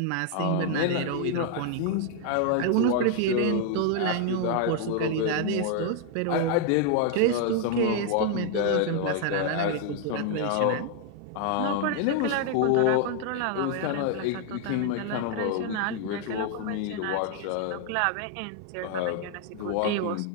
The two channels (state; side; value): different; both; correlation 0.00